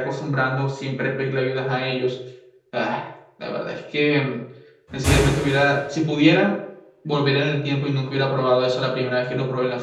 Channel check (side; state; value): both; identical; correlation 1.00